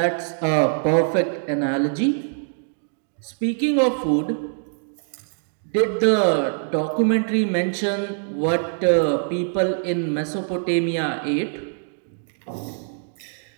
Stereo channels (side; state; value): left; silent; digital silence